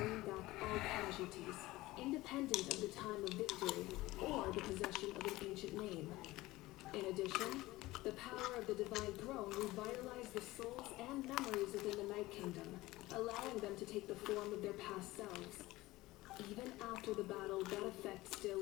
back all casualties, independent of the time of victory or the possession of an ancient name. In addition, the power of the Divine Throne revitalized the souls and memories within the Night Kingdom, allowing them to take the form of their past selves. Even after the battle, that effect still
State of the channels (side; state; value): right; quieter; 18.7 dB